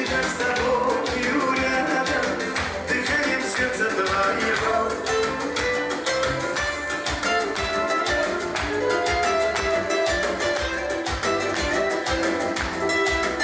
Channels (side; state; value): both; identical; correlation 1.00